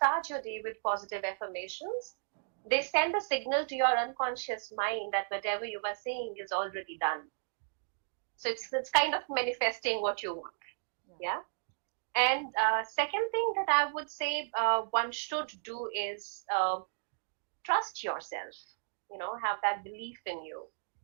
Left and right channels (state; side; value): silent; left; digital silence